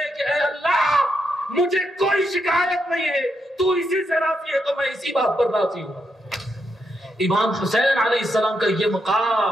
کہ اے اللہ مجھے کوئی شکایت نہیں ہے، تو اسی سے راضی ہے تو میں اسی بات پر راضی ہوں۔ امام حسین علیہ السلام کا یہ مقام،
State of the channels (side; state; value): both; normal; correlation 0.81